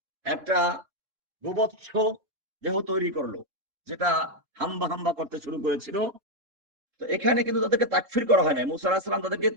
একটা গোবৎস দেহ তৈরি করলো, যেটা হাম্বা হাম্বা করতে শুরু করেছিল। তো এখানে কিন্তু তাদেরকে তাকফীর করা হয় না, মূসা আলাইহিস সালাম তাদেরকে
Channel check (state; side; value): late; left; 3.7 ms